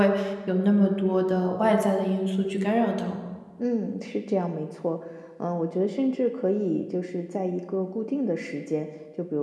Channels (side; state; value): both; identical; correlation 1.00